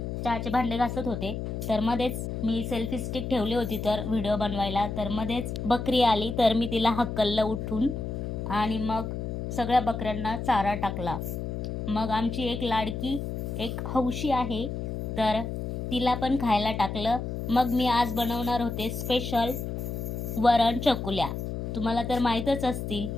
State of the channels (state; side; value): noise; left; hum, 4 dB below the sound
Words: चहाचे भांडे घासत होते तर मध्येच मी सेल्फी स्टिक ठेवली होती तर व्हिडिओ बनवायला. तर मध्येच बकरी आली तर मी तिला हकललं उठून आणि मग सगळ्या बकऱ्यांना चारा टाकला. मग आमची एक लाडकी एक हौशी आहे तर तिला पण खायला टाकलं. मग मी आज बनवणार होते स्पेशल वरण चकुल्या. तुम्हाला तर माहीतच असतील.